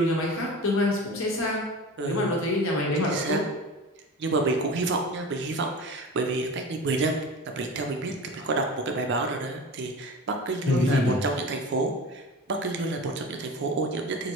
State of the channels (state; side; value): normal; both; correlation 0.33